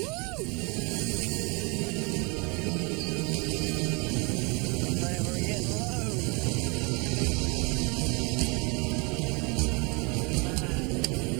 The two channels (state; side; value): quieter; left; 30.4 dB